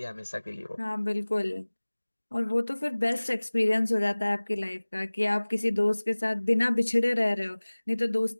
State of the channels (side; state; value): both; inverted; correlation -1.00